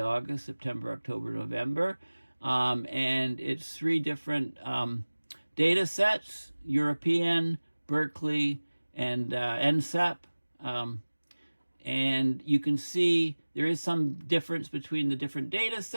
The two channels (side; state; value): both; inverted; correlation -1.00